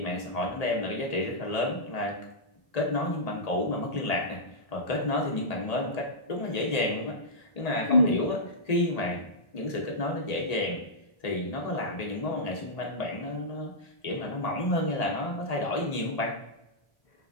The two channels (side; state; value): right; late; 1.8 ms